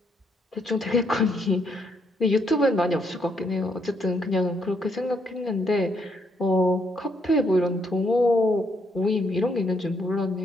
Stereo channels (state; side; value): normal; both; correlation 0.73